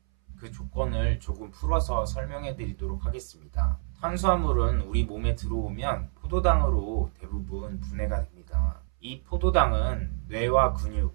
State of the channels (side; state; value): left; silent; 59 dB below the other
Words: 그 조건을 조금 풀어서 설명해 드리도록 하겠습니다. 탄수화물은 우리 몸에 들어오면 포도당으로 대부분 분해가 됩니다. 이 포도당은 뇌와